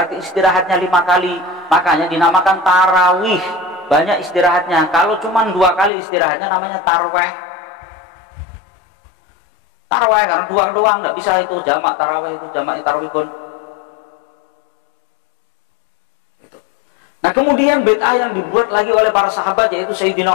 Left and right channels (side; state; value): right; drops out; at 5.9 s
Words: istirahatnya 5 kali. Makanya dinamakan tarawih. Banyak istirahatnya. Kalau cuma 2 kali istirahatnya namanya tarweh. Tarweh karena 2 doang, nggak bisa itu jamak tarawih, itu jamak tarawih pun. Nah kemudian bid'ah yang dibuat lagi oleh para sahabat yaitu